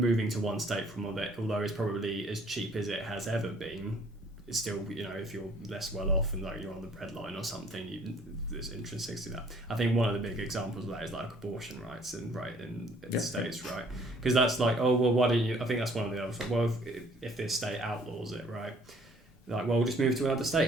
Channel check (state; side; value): normal; both; correlation 0.58